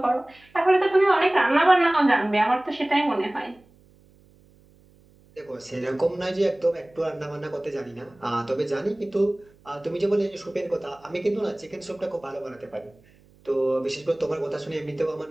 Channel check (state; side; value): noise; right; hum, 29 dB below the sound